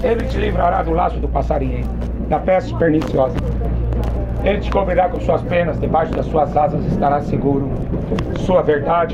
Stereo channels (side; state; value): both; identical; correlation 1.00